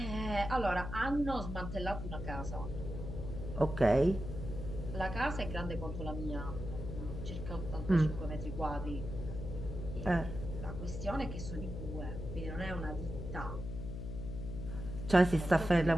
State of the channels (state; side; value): noise; left; hum, 6 dB below the sound